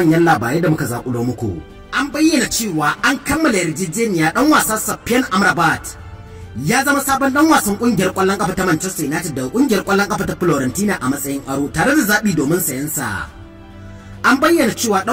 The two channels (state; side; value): identical; both; correlation 1.00